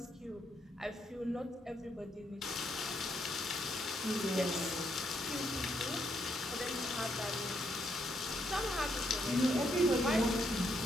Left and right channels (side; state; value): both; normal; correlation 0.76